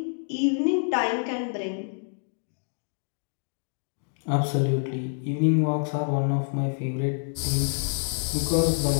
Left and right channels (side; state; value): right; silent; digital silence